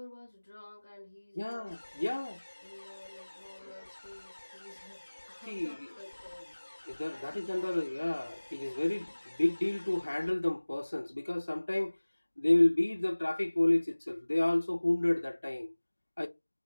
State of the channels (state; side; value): inverted; both; correlation -1.00